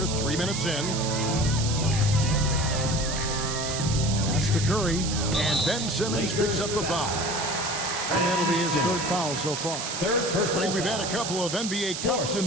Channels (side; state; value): right; noise; hiss, 5 dB below the sound